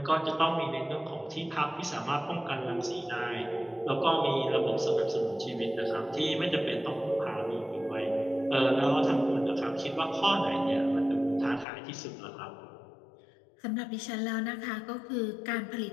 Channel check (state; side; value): drops out; right; at 11.7 s